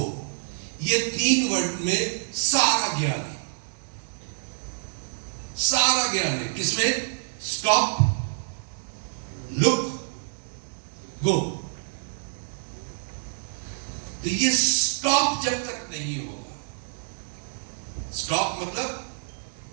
ये 3 वर्ड में सारा ज्ञान है, सारा ज्ञान है। किसमें? स्टॉप, लुक, गो। तो ये स्टॉप जब तक नहीं होगा, स्टॉप मतलब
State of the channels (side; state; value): left; silent; 60 dB below the other